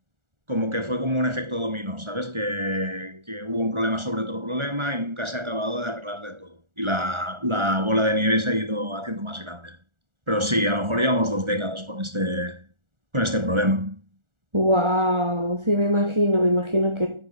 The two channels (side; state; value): left; late; 1.4 ms